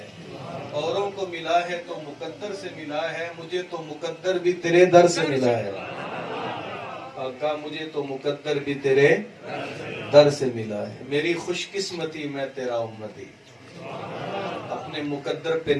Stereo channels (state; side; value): identical; both; correlation 1.00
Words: اوروں کو ملا ہے تو مقدر سے ملا ہے، مجھے تو مقدر بھی تیرے در سے ملا ہے۔ آقا مجھے تو مقدر بھی تیرے در سے ملا ہے۔ میری خوش قسمتی میں تیرا امتی، اپنے مقدر پہ